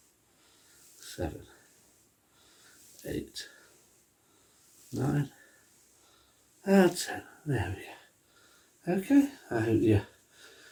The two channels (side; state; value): both; identical; correlation 1.00